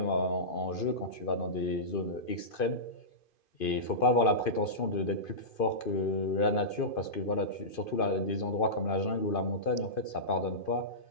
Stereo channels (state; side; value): late; right; 2.5 ms